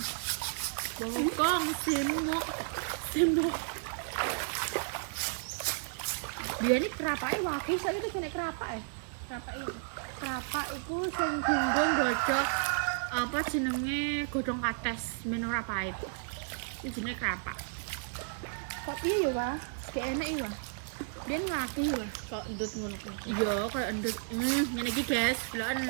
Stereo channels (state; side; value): silent; left; digital silence